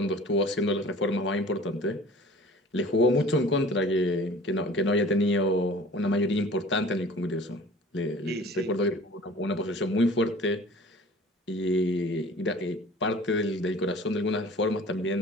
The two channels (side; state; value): both; normal; correlation 0.45